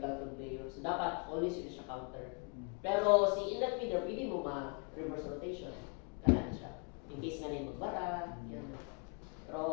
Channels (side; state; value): right; quieter; 38.6 dB